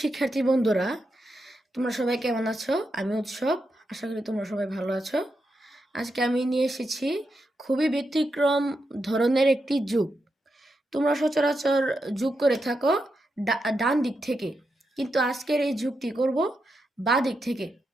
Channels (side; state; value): both; normal; correlation 0.86